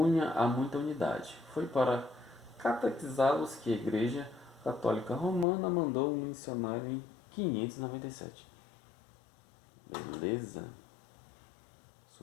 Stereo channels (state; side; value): drops out; right; at 5.5 s